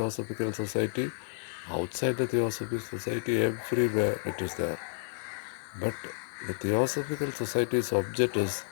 Society, outside the Theosophical Society, everywhere it is there. But the Theosophical Society's object is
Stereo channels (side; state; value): right; silent; digital silence